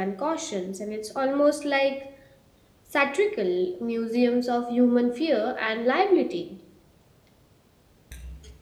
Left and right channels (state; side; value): identical; both; correlation 1.00